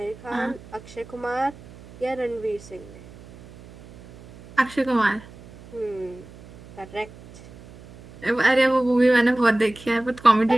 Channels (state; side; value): noise; right; hum, 20 dB below the sound